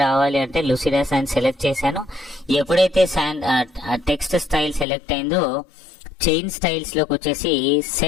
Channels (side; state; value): right; drops out; at 4.9 s